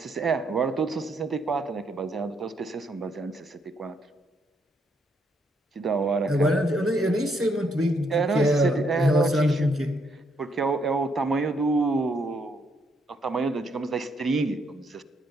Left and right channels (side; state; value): both; normal; correlation 0.73